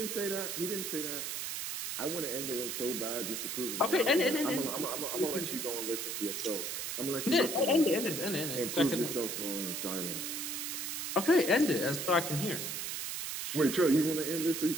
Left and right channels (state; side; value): noise; right; hiss, 4 dB below the sound